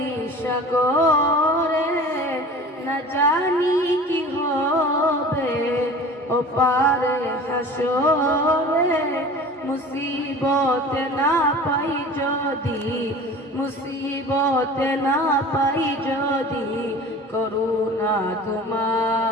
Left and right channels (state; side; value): normal; both; correlation 0.40